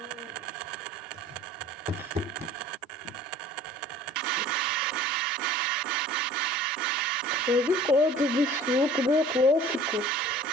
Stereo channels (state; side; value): normal; both; correlation 0.47